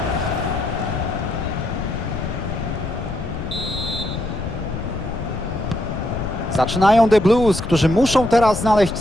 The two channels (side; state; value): left; noise; rumble, 6 dB below the sound